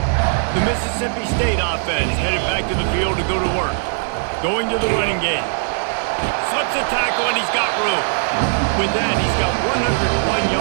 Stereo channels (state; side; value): silent; left; digital silence